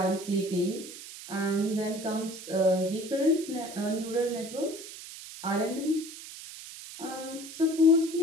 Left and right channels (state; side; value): noise; right; hiss, 13 dB below the sound